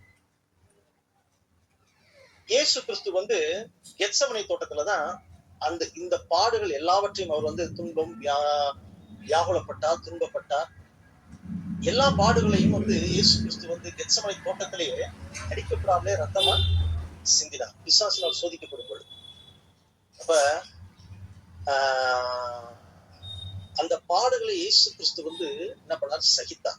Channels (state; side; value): identical; both; correlation 1.00